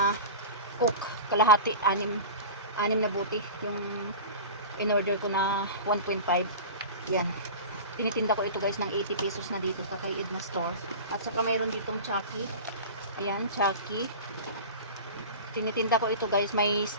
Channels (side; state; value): both; inverted; correlation -0.32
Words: cook, kalahati, 6 na buti. Yung in-order ko na 1.5. Yan. Tinitinda ko ito guys ng 80 pesos na dito sa kay Edna Store. At saka mayroon ditong Chucky. Ayan, Chucky. Tinitinda ko ito guys. May